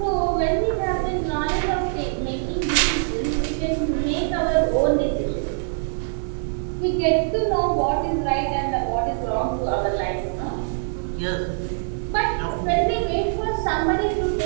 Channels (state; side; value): silent; left; 63 dB below the other